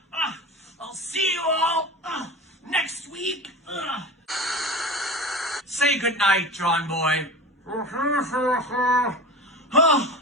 I'll see you all next week. Say goodnight, John Boy.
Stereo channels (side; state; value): both; normal; correlation 0.31